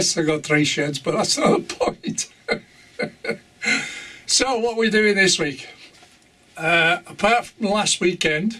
I got 3 sheds, but that's not the point. So, what are we doing this week? Apart from last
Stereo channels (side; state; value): both; identical; correlation 1.00